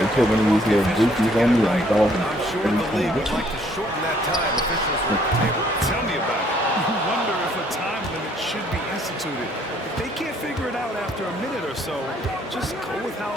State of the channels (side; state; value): both; normal; correlation 0.63